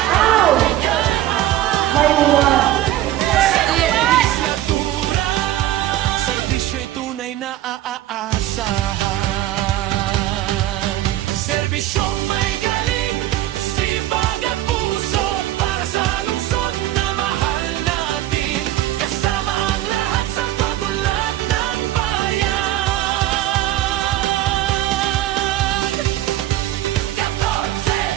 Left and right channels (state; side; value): quieter; left; 14.1 dB